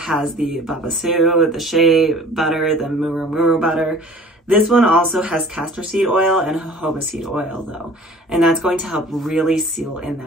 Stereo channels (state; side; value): normal; both; correlation 0.47